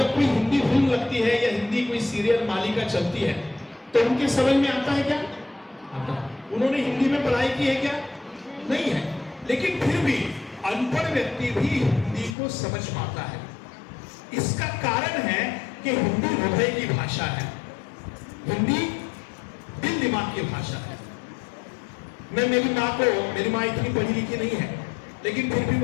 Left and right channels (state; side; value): drops out; right; at 12.4 s